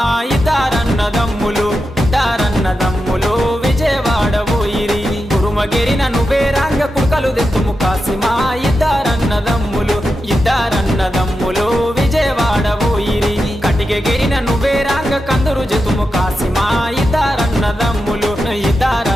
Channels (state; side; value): normal; both; correlation 0.89